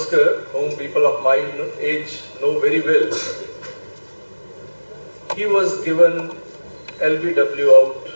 whom people of my age know very well, he was given LBW out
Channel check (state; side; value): inverted; both; correlation -1.00